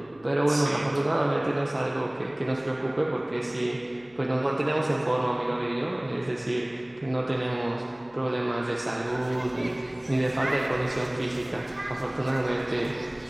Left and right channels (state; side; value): noise; right; hum, 29 dB below the sound